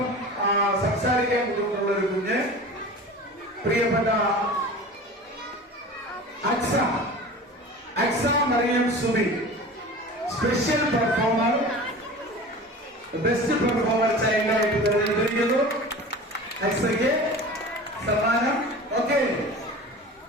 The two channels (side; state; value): both; normal; correlation 0.36